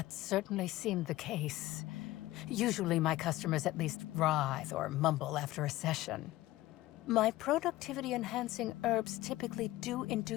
certainly seemed the case. Usually my customers at least writhe or mumble after a session. My productivity-enhancing herbs typically do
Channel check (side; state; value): right; quieter; 16.9 dB